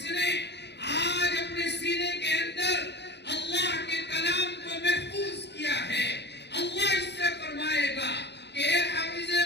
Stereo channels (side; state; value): right; late; 0.50 ms